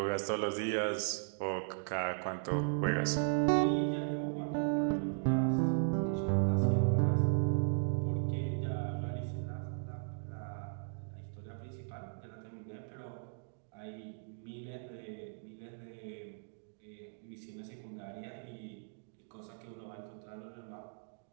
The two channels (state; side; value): silent; left; digital silence